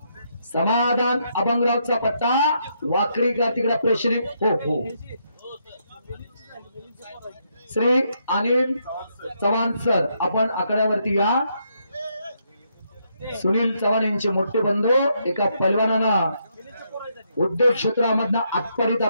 समाधान अभंगरावचा पट्टा, वाकरीकर तिकडे प्रेक्षणीय. हो हो, श्री अनिल चव्हाण सर आपण आकड्यावरती या. सुनील चव्हाण यांचे मोठे बंधू, एका पैलवानानं उद्योग क्षेत्रामधनं आत्तापर्यंत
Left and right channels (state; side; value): inverted; both; correlation -0.77